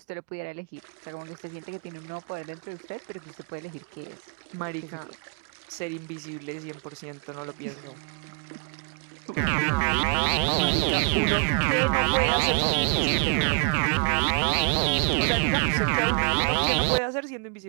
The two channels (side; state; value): left; quieter; 38.7 dB